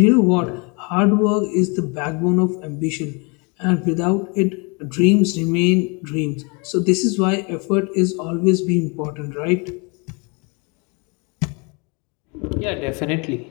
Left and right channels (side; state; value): right; quieter; 31.6 dB